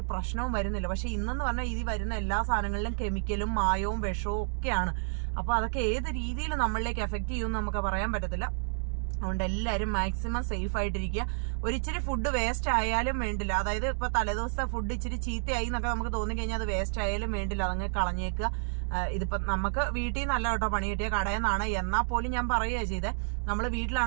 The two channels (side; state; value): left; silent; digital silence